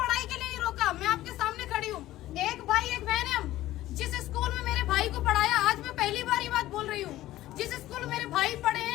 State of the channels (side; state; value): right; quieter; 15.3 dB